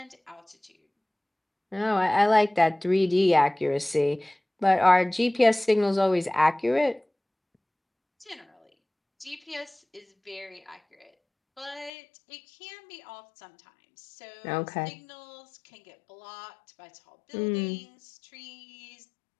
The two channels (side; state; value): right; drops out; at 11.9 s